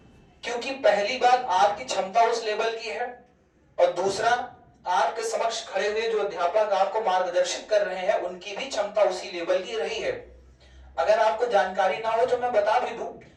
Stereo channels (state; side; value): identical; both; correlation 1.00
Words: क्योंकि पहली बात, आपकी क्षमता उस लेवल की है, और दूसरा, आपके समक्ष खड़े हुए जो अध्यापक आपको मार्गदर्शित कर रहे हैं उनकी भी क्षमता उसी लेवल की रही है। अगर आपको जानकारी ना हो तो मैं बता भी दूं,